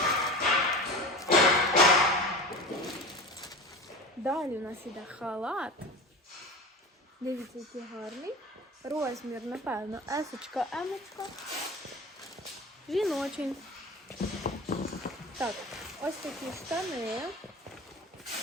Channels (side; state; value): both; normal; correlation 0.31